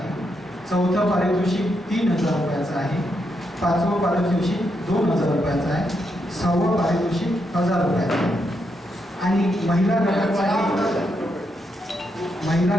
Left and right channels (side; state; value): both; normal; correlation 0.81